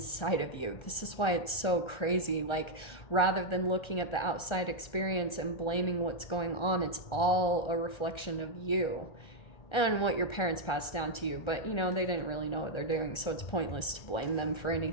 of you. This is why it's so crazy. Like, rather than looking at the outside experience and blaming what's going on, it's all a reflection of you. and what your parents passed down to you, but you know, they didn't really know what they're doing, so it's pointless to blame them for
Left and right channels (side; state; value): right; late; 1.3 ms